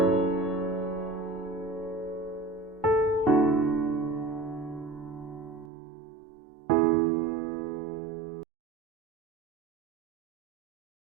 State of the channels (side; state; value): left; drops out; at 5.7 s